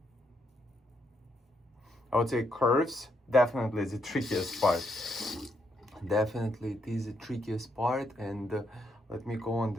I would say curves definitely is the trickiest part. Definitely it is the trickiest part. And let me go on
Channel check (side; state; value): both; normal; correlation 0.77